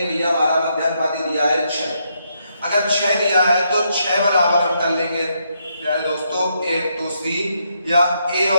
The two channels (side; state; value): both; inverted; correlation -0.77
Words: भैया हमारा मध्यानुपाती दिया है 6। अगर 6 दिया है तो 6 बराबर हम कर लेंगे यार दोस्तों a इंटू सी, या a